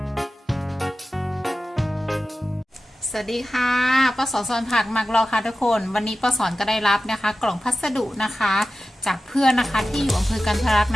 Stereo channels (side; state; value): both; normal; correlation 0.94